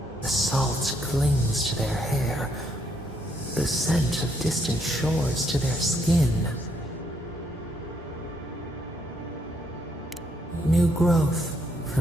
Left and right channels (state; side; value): normal; both; correlation 0.73